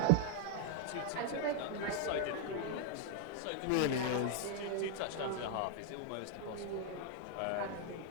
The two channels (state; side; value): different; both; correlation 0.00